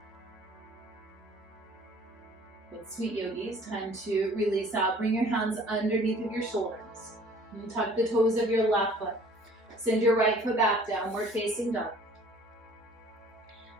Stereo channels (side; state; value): both; normal; correlation 0.52